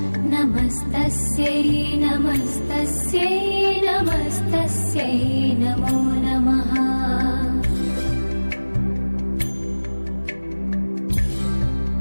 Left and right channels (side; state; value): both; inverted; correlation -1.00